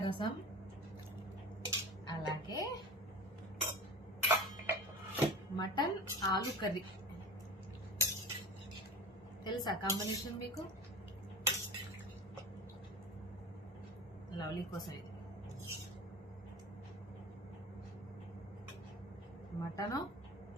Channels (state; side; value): normal; both; correlation 0.33